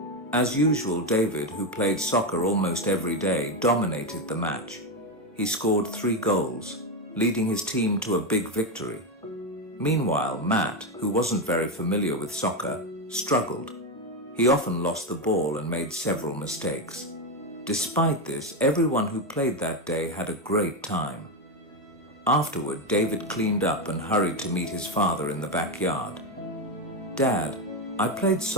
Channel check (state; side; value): normal; both; correlation 0.10